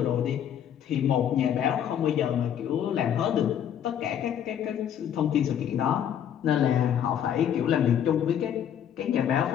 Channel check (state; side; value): quieter; right; 9.5 dB